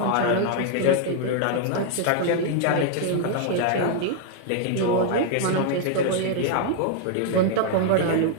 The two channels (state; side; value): different; both; correlation 0.00